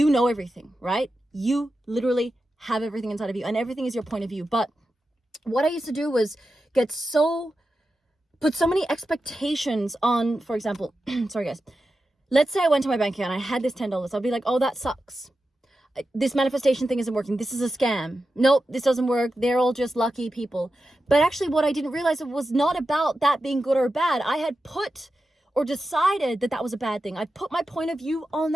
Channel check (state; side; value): normal; both; correlation 0.91